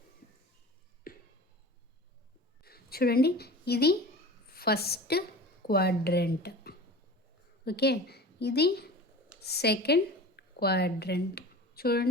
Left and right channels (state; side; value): normal; both; correlation 0.37